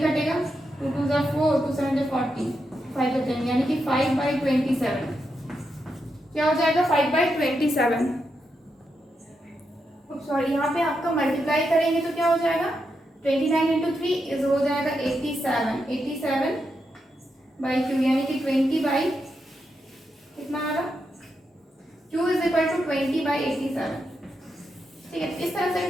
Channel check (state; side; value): normal; both; correlation 0.84